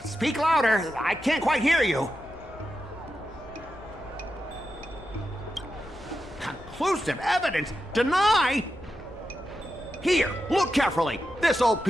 Speak louder. I can't quite hear you. Conclusive evidence? Deny? Here, look carefully. This old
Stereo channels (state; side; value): noise; left; rumble, 19 dB below the sound